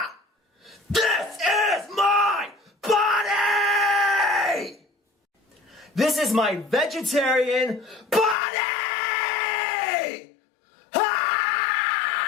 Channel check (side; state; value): right; drops out; at 8.3 s